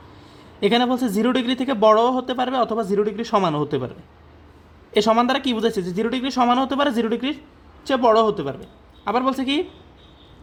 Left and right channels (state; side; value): identical; both; correlation 1.00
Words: এখানে বলছে 0 ডিগ্রি থেকে বড়ও হতে পারবে অথবা 0 ডিগ্রি সমানও হতে পারবে। এই সমান দ্বারা কী বুঝেছে, যে 0 ডিগ্রি সমানও হতে পারে, 0 ডিগ্রির চেয়ে বড়ও হতে পারবে। আবার বলছে কি